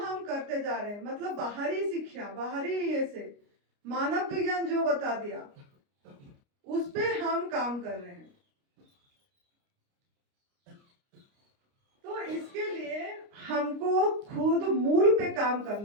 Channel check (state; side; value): late; left; 29 ms